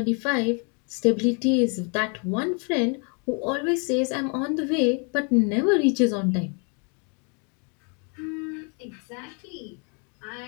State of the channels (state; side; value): quieter; right; 36.9 dB